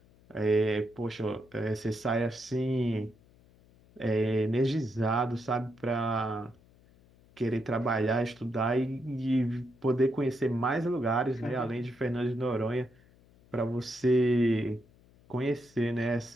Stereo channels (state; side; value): noise; left; hum, 28 dB below the sound